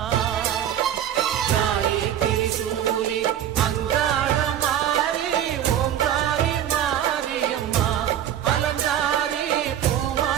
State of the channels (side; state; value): left; quieter; 10.5 dB